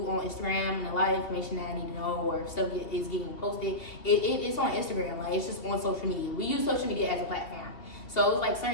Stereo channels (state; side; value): late; right; 2.7 ms